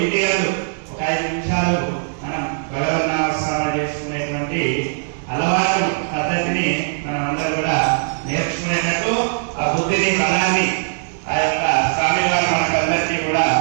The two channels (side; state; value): left; silent; 66 dB below the other